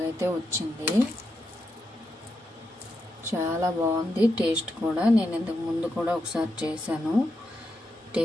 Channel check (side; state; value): both; normal; correlation 0.85